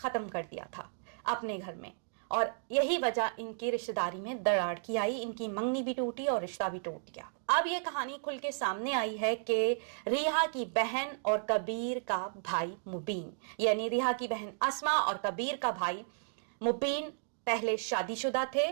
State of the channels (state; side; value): silent; left; digital silence